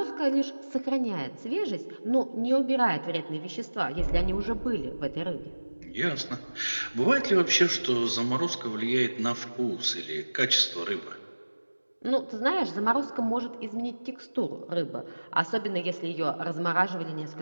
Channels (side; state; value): both; inverted; correlation -1.00